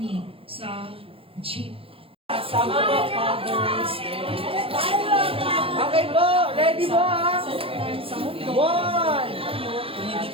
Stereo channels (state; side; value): late; left; 0.27 ms